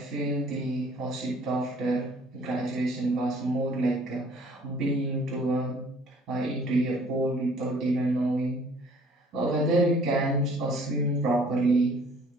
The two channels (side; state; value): both; normal; correlation 0.56